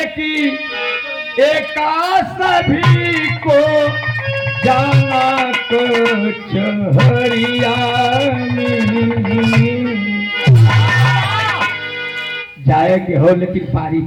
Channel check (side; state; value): both; identical; correlation 1.00